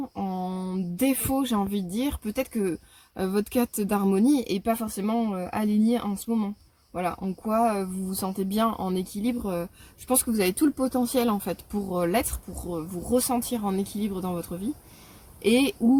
en défaut, j'ai envie de dire, peut-être que votre quête d'harmonie est pas forcément alignée en ce moment. Voilà, en quoi vous vous sentez bien en équilibre. Je pense que vous avez tout le potentiel en fait pour l'être, pour vous ressentir en équilibre dans votre vie. Et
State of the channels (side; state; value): both; identical; correlation 1.00